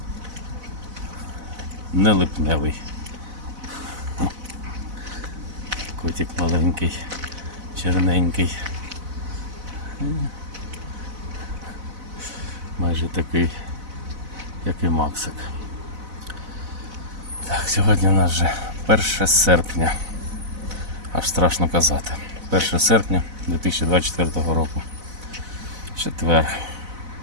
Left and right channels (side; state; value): left; late; 4.0 ms